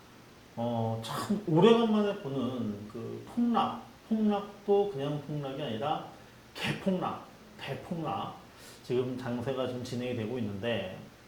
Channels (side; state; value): both; identical; correlation 1.00